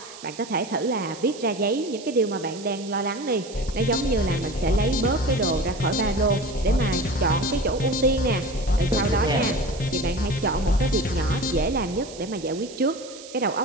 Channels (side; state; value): right; noise; hiss, 16 dB below the sound